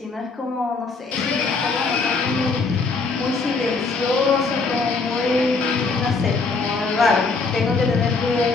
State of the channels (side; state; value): right; quieter; 4.2 dB